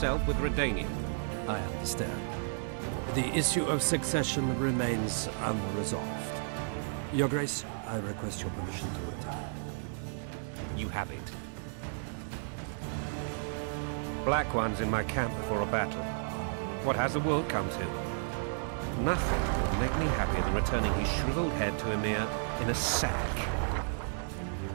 with Redania. I understand. The issue of succession remains unresolved. Your Grace, I request your permission to retire. You have it. Black One's in my camp before a battle. What has the world come to? Nothing would make me happier than returning his shriveled head to Emir in a sack.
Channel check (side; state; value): left; silent; digital silence